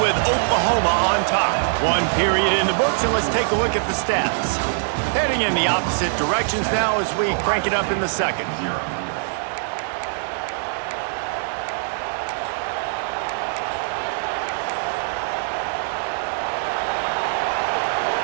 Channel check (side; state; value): left; silent; 57 dB below the other